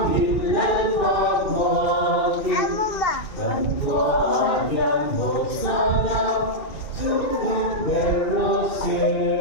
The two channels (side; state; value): right; late; 2.3 ms